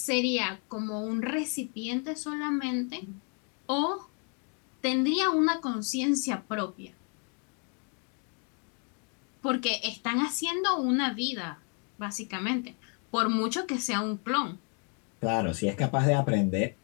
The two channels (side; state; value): right; quieter; 38.8 dB